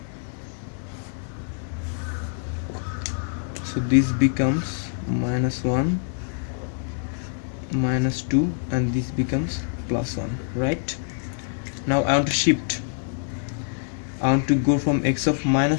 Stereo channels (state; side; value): silent; right; digital silence